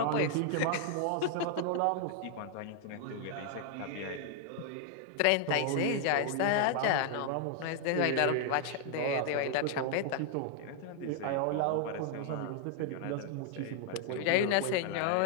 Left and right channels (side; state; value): both; different; correlation 0.00